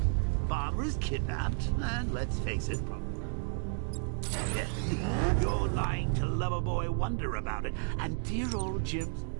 Barbara's kidnapped, and let's face it, you're lying to Loverboy Wonder about it, and dear old Jim's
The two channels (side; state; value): left; silent; 56 dB below the other